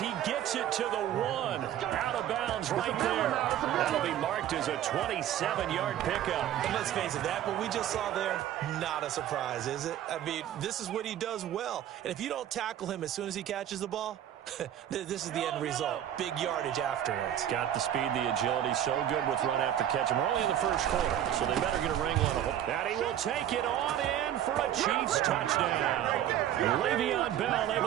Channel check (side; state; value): left; quieter; 11.2 dB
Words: gets it to the 1. Out of bounds right there. That'll be marked as a 27-yard pickup. And let's face it, that what we just saw there, not a surprise, is it? I mean, this is what he does well. And if you don't tackle him as soon as he catches the ball, this is the end result. Big yardage afterwards. Got the speed, the agility, so good with run after catch. We're only in the first quarter, so they better get a wrangle on him. And he will take it on in for a Chiefs touchdown. Le'Veon Bell